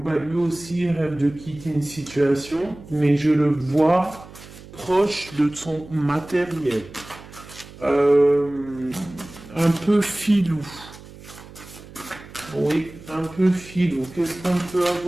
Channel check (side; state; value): right; noise; hum, 18 dB below the sound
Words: Lui aussi rêve de quitter une situation, mais je le vois proche de son matériel. Un peu filou. Oui, un peu filou. Qu'est-ce qu'on peut